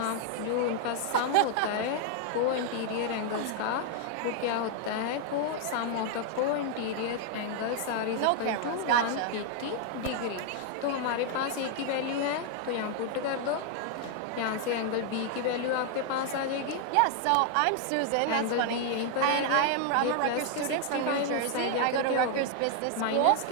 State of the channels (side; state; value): both; different; correlation 0.00